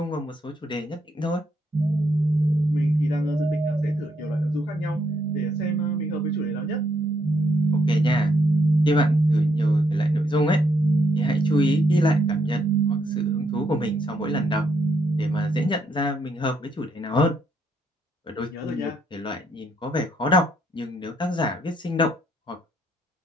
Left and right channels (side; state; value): both; normal; correlation 0.74